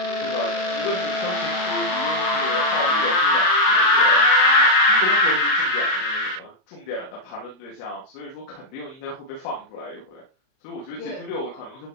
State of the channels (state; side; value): late; right; 38 ms